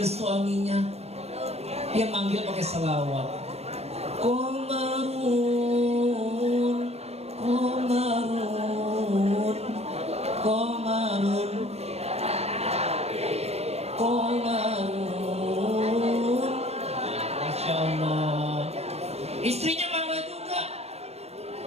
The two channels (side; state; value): left; late; 0.31 ms